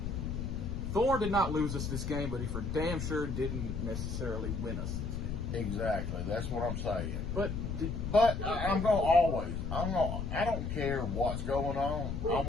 Thorne did not lose us this game, but he for damn sure didn't necessarily win us this game. Exactly. That's what I'm saying. But I'm going to I don't care what's going on. I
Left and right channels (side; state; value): left; noise; rumble, 3 dB below the sound